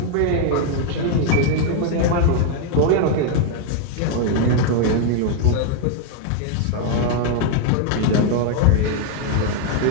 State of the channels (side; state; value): both; different; correlation 0.01